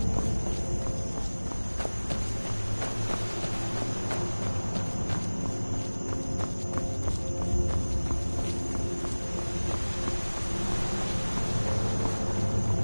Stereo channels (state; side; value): inverted; both; correlation -1.00